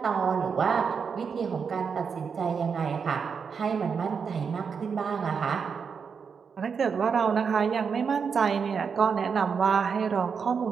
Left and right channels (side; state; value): left; quieter; 6.1 dB